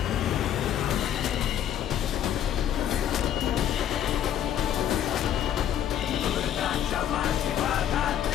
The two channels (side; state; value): right; quieter; 10.2 dB